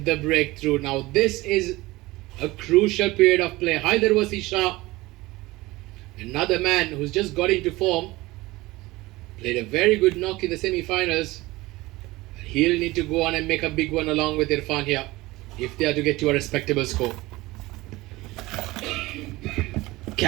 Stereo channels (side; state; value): left; quieter; 20.0 dB